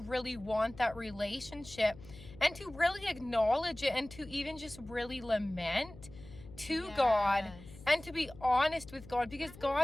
want that relationship. And to really acknowledge it and to even just really lament to God. And to be honest with God, because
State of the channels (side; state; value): left; noise; hum, 18 dB below the sound